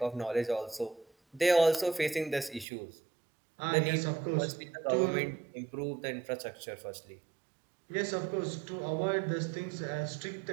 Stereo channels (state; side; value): drops out; left; at 2.7 s